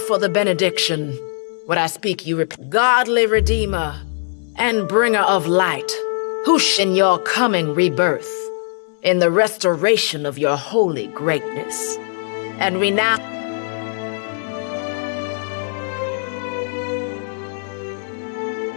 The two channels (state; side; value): silent; right; digital silence